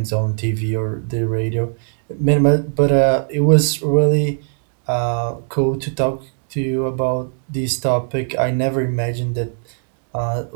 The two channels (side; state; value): left; silent; digital silence